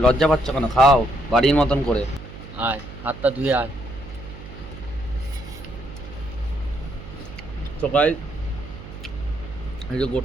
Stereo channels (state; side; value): noise; right; hum, 14 dB below the sound